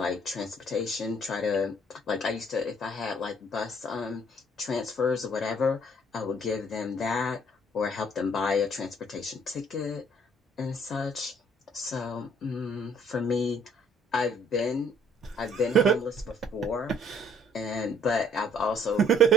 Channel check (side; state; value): both; normal; correlation 0.60